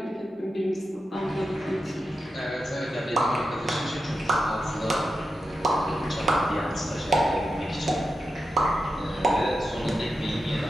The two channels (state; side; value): normal; both; correlation 0.89